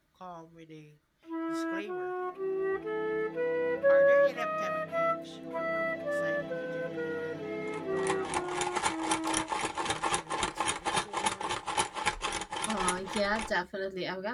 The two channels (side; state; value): both; identical; correlation 1.00